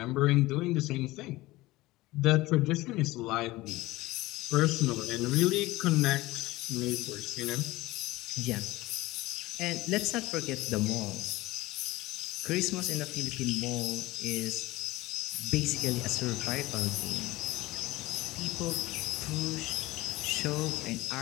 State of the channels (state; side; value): quieter; right; 19.0 dB